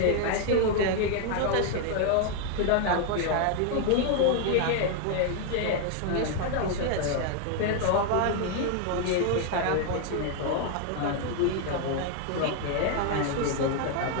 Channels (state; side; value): different; both; correlation 0.00